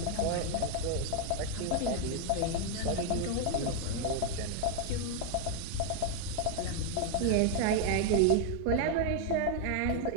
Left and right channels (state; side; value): different; both; correlation 0.00